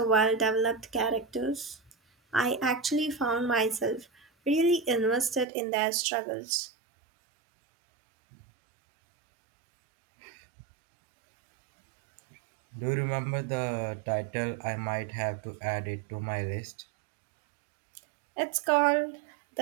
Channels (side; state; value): left; drops out; at 5.5 s